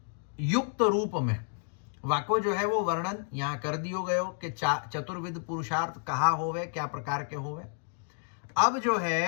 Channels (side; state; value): right; silent; 58 dB below the other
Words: युक्त रूप में वाको जो है वो वर्णन यहाँ कर दियो गयो कि चतुर्विध पुरुषार्थ कहा होवे, क्या प्रकार के होवे। अब जो